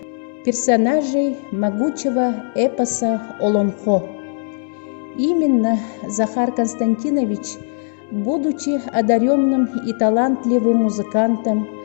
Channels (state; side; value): silent; right; 66 dB below the other